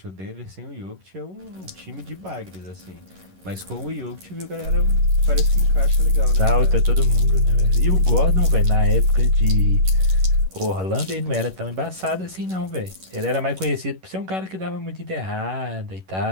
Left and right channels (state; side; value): late; left; 11 ms